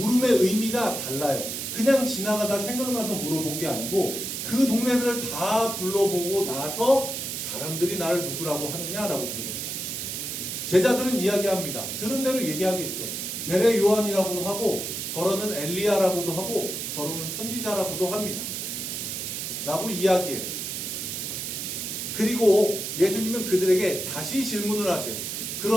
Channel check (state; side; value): noise; right; hiss, 4 dB below the sound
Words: 의미가 달라요. 그냥 지나가다 생각나서 물어본 게 아니고 그 동네들을 다 둘러보고 나서 사람들이 나를 누구라고 하느냐라고 물어본 거예요. 제자들은 이야기합니다. 들은 대로 얘기하겠죠. 세례 요한이라고도 하고 더러는 엘리야라고도 하고 더러는 선지자라고도 합니다. 라고 이야기해요. 그리고 예수님은 그들에게 다시 질문을 하세요.